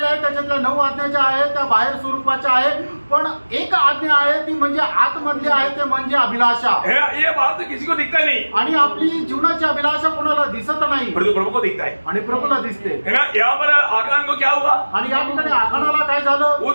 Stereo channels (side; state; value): both; inverted; correlation -1.00